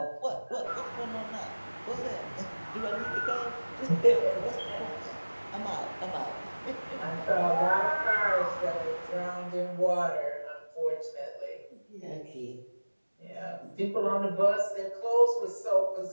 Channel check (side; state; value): both; inverted; correlation -1.00